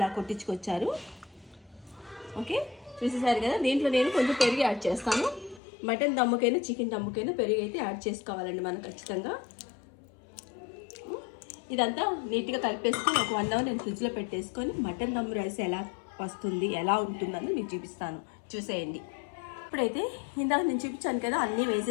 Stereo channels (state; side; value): drops out; right; at 5.6 s